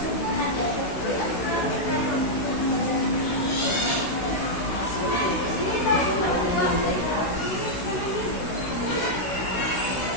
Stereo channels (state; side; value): late; right; 16 ms